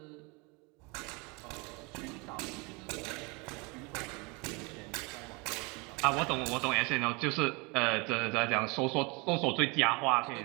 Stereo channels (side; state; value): left; quieter; 28.5 dB